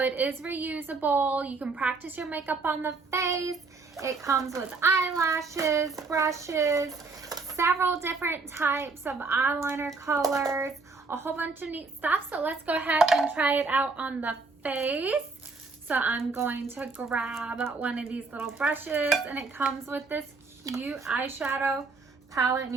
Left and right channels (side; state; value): left; quieter; 4.1 dB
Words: is reusable. You can practice your makeup on the face. It comes with eyelashes, brushes, several different types of eyeliner colors, a whole bunch of neat stuff. So let's go ahead and try it out on the face. So I'm going to grab one of these little brushes, and it comes with this cute eyeshadow palette,